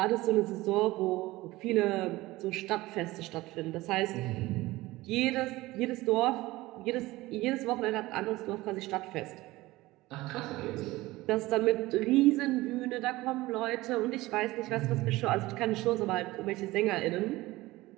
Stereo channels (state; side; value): quieter; left; 19.0 dB